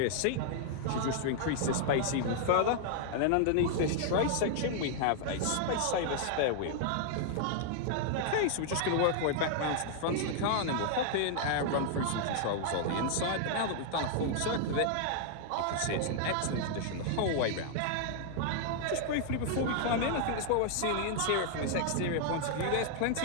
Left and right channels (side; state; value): both; different; correlation -0.01